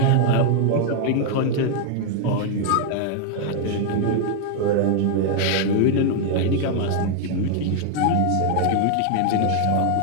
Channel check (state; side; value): different; both; correlation 0.00